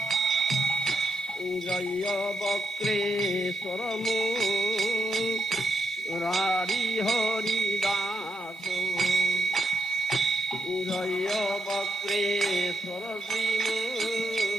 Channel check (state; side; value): normal; both; correlation 0.82